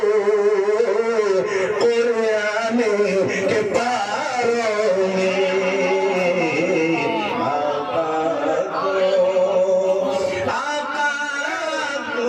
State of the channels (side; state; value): both; identical; correlation 1.00